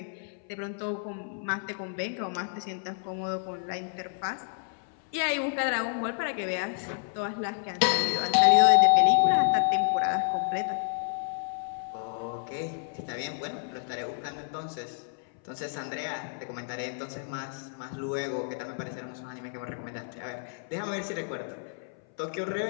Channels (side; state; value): right; silent; 58 dB below the other